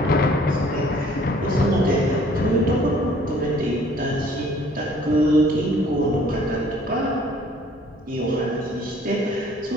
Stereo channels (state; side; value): normal; both; correlation 0.56